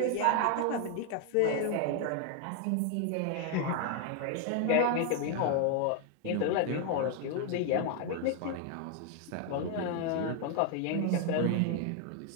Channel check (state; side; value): different; both; correlation 0.00